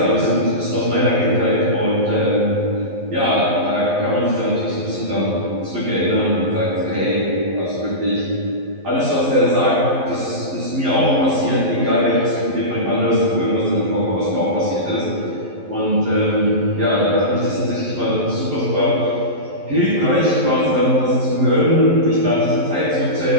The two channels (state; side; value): late; left; 11 ms